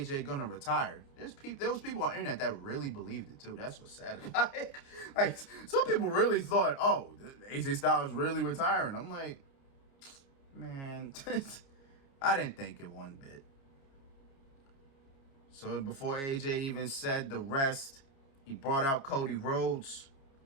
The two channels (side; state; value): right; late; 29 ms